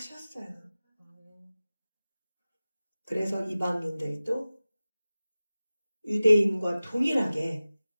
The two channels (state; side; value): inverted; both; correlation -0.97